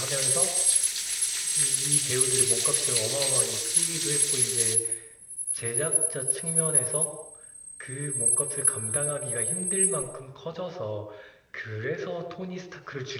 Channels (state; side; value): identical; both; correlation 1.00